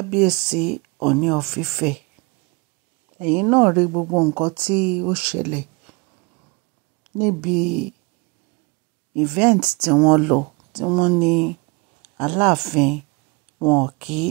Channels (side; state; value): left; quieter; 27.3 dB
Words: Ọọ̀ni of Ifẹ̀. ẹ̀yin náà rí gbogbo nǹkan tí ó ṣẹlẹ̀ níbi event tí wọ́n lọ tí wọ́n ní Aláàfin wọn kí